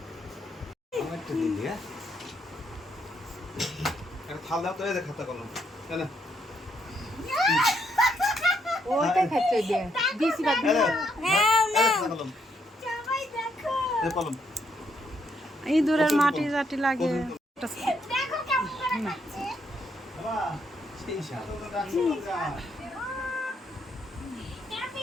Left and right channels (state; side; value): normal; both; correlation 0.75